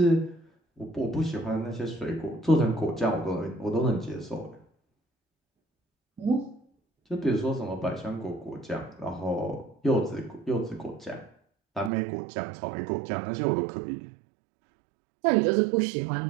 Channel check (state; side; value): drops out; left; at 11.9 s